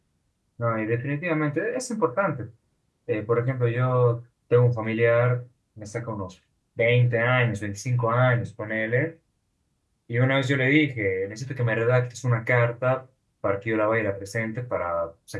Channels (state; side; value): identical; both; correlation 1.00